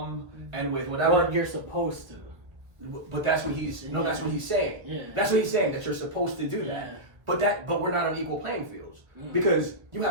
and with whatever. Well, you're supposed to. But that's what he's that's what he's saying. Yeah. That's what he's saying, that you're supposed to do that. But we're not on equal playing fields because you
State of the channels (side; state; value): left; late; 1.4 ms